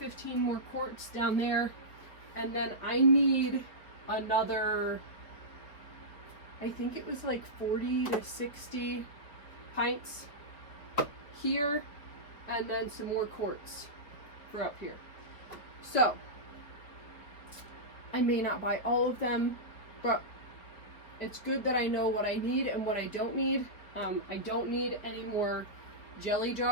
more quarts down there, and then I need another, I think it was like 40 to 60 pints here, and then some more quarts for up here. So I may not buy all of them, but it's good that I know what I need and what I don't need. I don't need any more jelly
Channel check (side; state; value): right; late; 4.4 ms